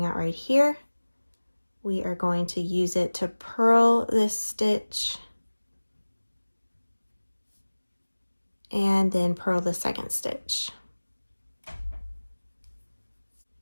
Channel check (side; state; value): both; inverted; correlation -1.00